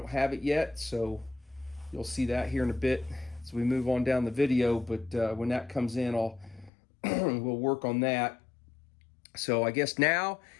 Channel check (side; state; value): right; drops out; at 6.7 s